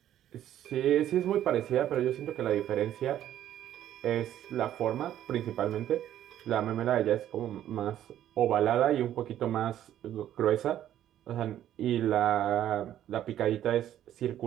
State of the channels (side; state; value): left; quieter; 11.6 dB